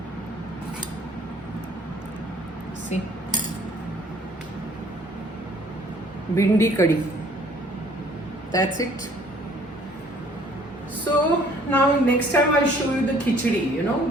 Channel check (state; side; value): normal; both; correlation 0.58